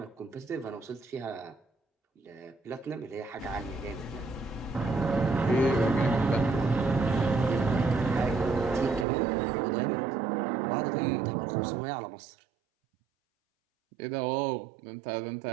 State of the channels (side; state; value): left; drops out; at 9.1 s